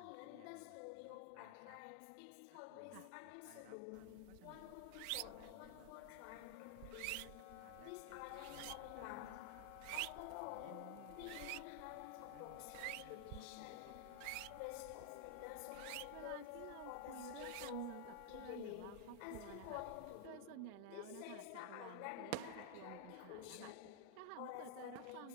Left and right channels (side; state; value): both; different; correlation 0.00